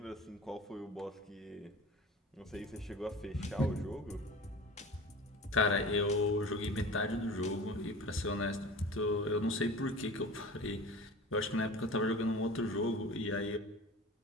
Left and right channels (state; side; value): normal; both; correlation 0.37